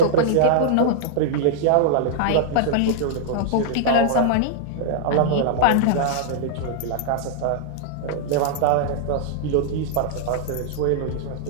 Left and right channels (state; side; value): different; both; correlation -0.02